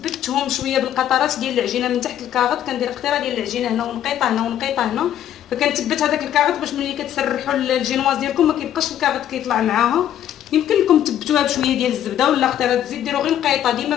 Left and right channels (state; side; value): quieter; right; 10.9 dB